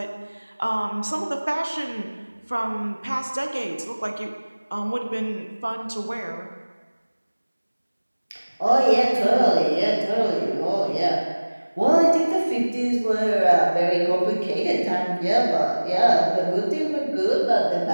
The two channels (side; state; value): both; inverted; correlation -1.00